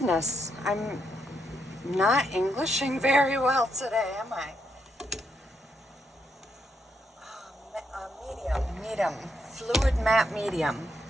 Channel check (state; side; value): normal; both; correlation 0.78